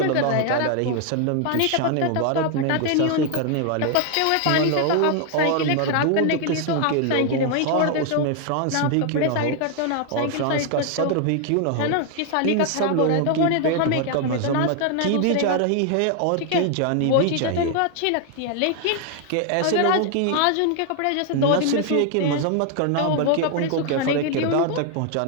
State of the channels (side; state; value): both; different; correlation 0.00